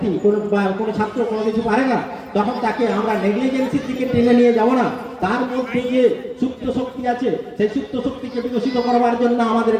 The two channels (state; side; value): identical; both; correlation 1.00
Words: কোনো ছাত্র কোনো কিছু পারে না, তখন তাকে আমরা নেগলিজেন্সির দিকে টেনে নিয়ে যাব না। তার মধ্যে যে সুপ্ত শক্তি আছে, সেই সুপ্ত শক্তিকে বিকশিত করবার জন্য